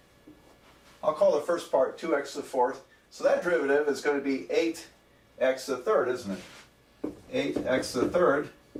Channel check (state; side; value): identical; both; correlation 1.00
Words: I'll call the first part 2x to the fourth. So that derivative is going to be 8x to the third, isn't it? 8x to the third